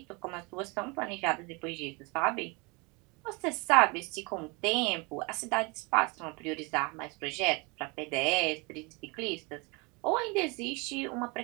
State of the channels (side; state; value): left; quieter; 28.7 dB